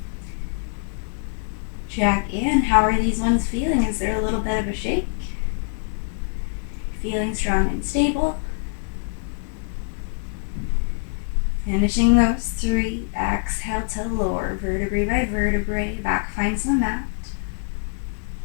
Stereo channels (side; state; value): right; silent; digital silence